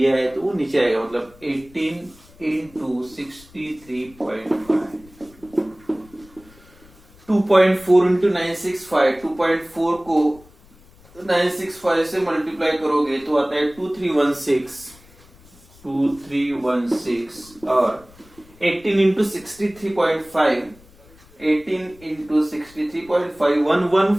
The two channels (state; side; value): noise; left; rumble, 25 dB below the sound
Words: है तो वो नीचे आएगा, मतलब 18 इंटू 63.5, 2.4 इंटू 965, 2.4 को 965 से मल्टीप्लाई करोगे तो आता है 2316 और 18 इंटू 63.5, 18 इंटू